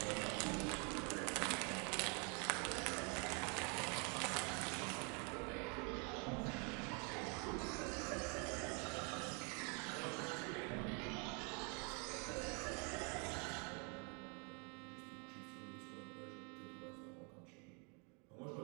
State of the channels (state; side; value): quieter; left; 34.7 dB